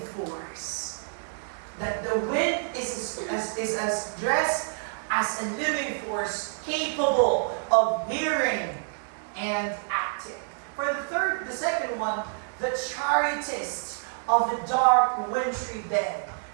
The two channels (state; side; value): silent; left; 59 dB below the other